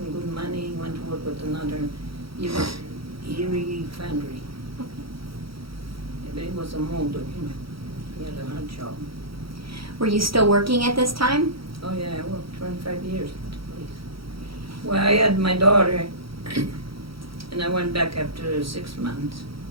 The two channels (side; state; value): left; late; 0.75 ms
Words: good money, he went to work with another, Erie foundry. But he was a molder, you know, he had a hard job. Were you still working at this time? Oh yeah, I worked 25 years at the place. Well, I had my daughter, and I went back after 6 months